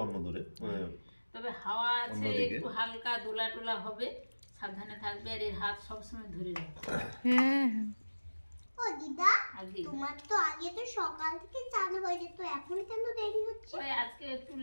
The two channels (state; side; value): inverted; both; correlation -1.00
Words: অন্য দূরে। তবে হাওয়া আছে, অন্যদিকে। একটু হালকা দোলা টোলা হবে, সাবধানে থাকবে। আর এর হাত সবসময় ধরে রাখবে। হ্যাঁ, ও দিদা, আগে তোমার তো আগে তো সকাল থেকে চালু হয়ে যেত, এখন কেন দেরি হচ্ছে? ওই আজকে একটু